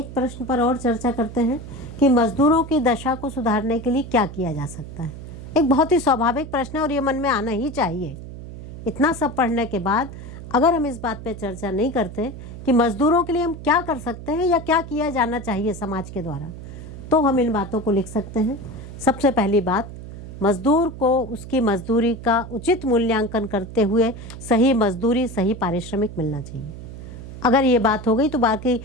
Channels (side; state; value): right; noise; hum, 12 dB below the sound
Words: प्रश्न पर और चर्चा करते हैं कि मजदूरों की दशा को सुधारने के लिए क्या किया जा सकता है। एक बहुत ही स्वाभाविक प्रश्न है और ये मन में आना ही चाहिए। इतना सब पढ़ने के बाद अगर हम इस बात पे चर्चा नहीं करते कि मजदूरों के लिए हम क्या कर सकते हैं या क्या किया जाना चाहिए समाज के द्वारा, तो हम इन बातों को लिख सकते हैं। सबसे पहली बात, मजदूर को उसकी मजदूरी का उचित मूल्यांकन करते हुए सही मजदूरी, सही पारिश्रमिक मिलना चाहिए। अगर ये बात हो गई तो बाकी